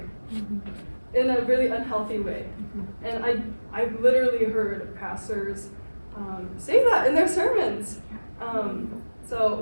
in a really unhealthy way. And I've literally heard pastors say that in their sermons. So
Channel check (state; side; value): inverted; both; correlation -1.00